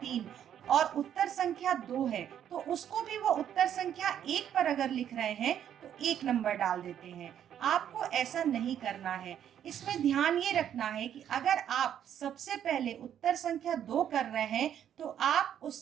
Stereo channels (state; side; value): quieter; left; 9.8 dB